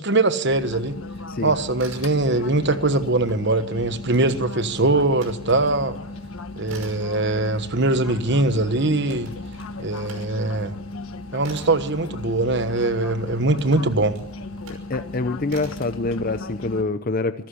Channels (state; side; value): normal; both; correlation 0.11